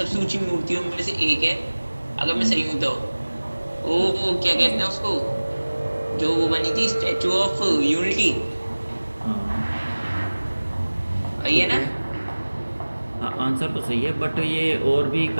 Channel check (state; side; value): inverted; both; correlation -1.00